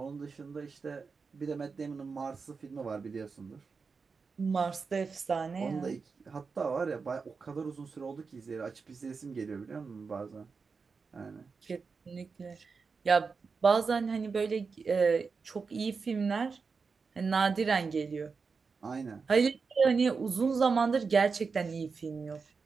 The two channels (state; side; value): quieter; left; 5.0 dB